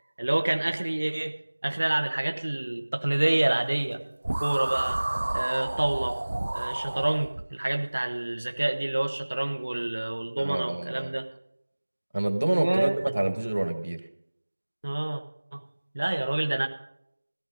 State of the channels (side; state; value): both; inverted; correlation -1.00